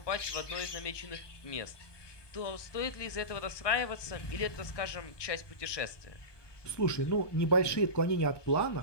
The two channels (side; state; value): right; late; 1.2 ms